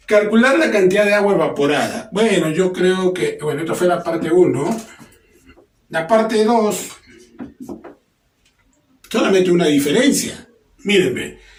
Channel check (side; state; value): both; identical; correlation 1.00